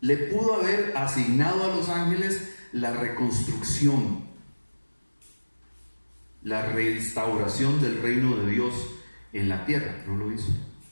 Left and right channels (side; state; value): both; inverted; correlation -1.00